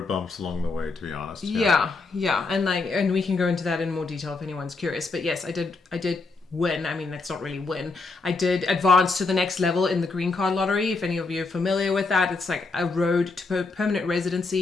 bumps along the way, to be honest. Yeah, and we can go into that in more detail if anyone's curious. But yes, I did win. I mean, that's not really win. I did advance to the next level in the green card lottery. If any of you are familiar with that, it's like a road to permanent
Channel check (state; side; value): quieter; right; 3.8 dB